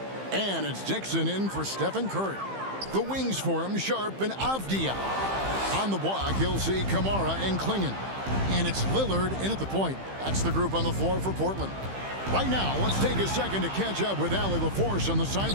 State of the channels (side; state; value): left; late; 15 ms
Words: And it's Dixon in for Stephen Curry. The wings for him, Sharp and Avdia. On the block, you'll see Kamara and Klingon. And it's Lillard in at the point. That's the group on the floor for Portland. Right now, let's take a second to catch up with Allie LaForce on the